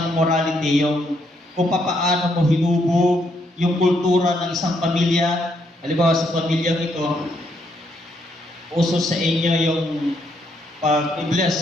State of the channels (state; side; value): normal; both; correlation 0.74